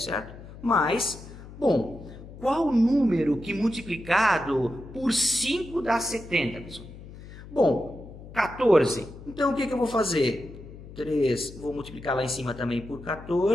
Mas... bom, qual o número que multiplicado por 5 dá 70, pessoal? Bom, 14. Então, o que eu vou fazer? 3, vou multiplicar lá em cima também por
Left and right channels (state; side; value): noise; left; hum, 16 dB below the sound